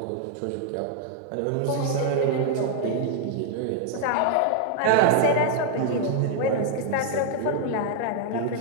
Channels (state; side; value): different; both; correlation 0.00